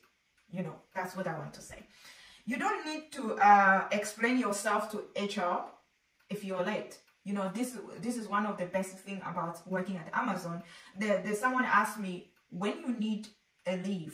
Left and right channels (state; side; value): identical; both; correlation 1.00